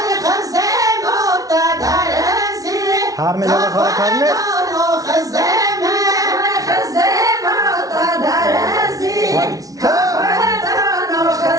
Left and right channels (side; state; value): left; late; 0.18 ms